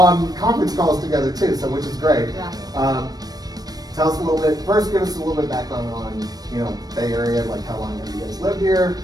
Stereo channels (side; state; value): left; late; 0.19 ms